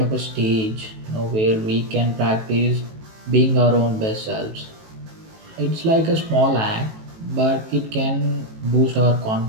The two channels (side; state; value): left; late; 18 ms